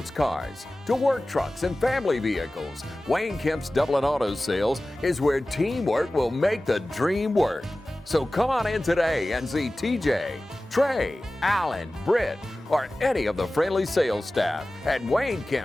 cars to work trucks and family vehicles, Wayne Kemp's Dublin Auto Sales is where teamwork will make the dream work. So come on in today and see TJ, Trey, Alan, Britt, or any of the friendly sales staff at Wayne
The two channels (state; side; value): normal; both; correlation 0.97